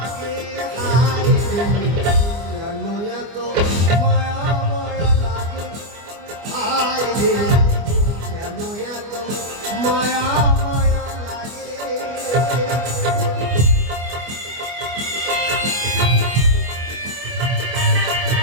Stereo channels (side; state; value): left; late; 24 ms